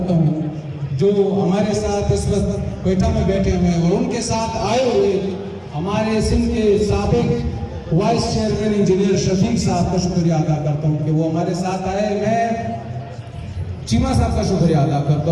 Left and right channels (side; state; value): both; identical; correlation 1.00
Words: ہوں جو ہمارے ساتھ اس وقت کوئٹہ میں بیٹھے ہوئے ہیں، اور ان کے ساتھ آئے ہوئے ہمارے سندھ کے سابق وائس چیئرمین انجینئر شفیق صاحب کا شکریہ ادا کرتا ہوں کہ وہ ہمارے ساتھ آئے. میں چیمہ صاحب کا شکریہ ادا